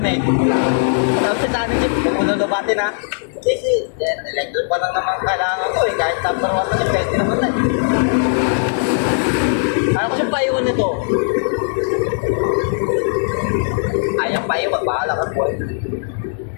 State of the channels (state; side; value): silent; right; digital silence